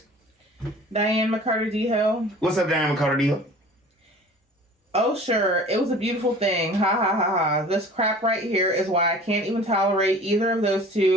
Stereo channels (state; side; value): normal; both; correlation 0.45